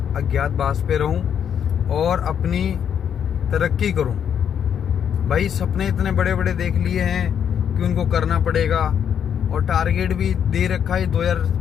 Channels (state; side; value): quieter; right; 8.5 dB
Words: पे रहूँ और अपनी तरक्की करूँ। भाई सपने इतने बड़े बड़े देख लिए हैं कि उनको करना पड़ेगा, और टारगेट भी दे रखा है।